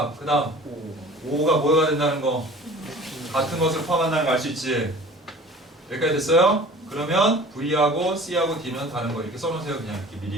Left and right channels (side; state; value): both; normal; correlation 0.44